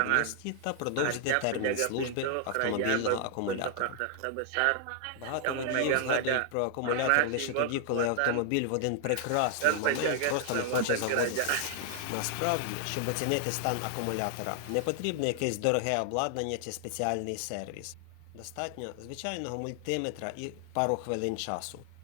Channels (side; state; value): both; different; correlation 0.00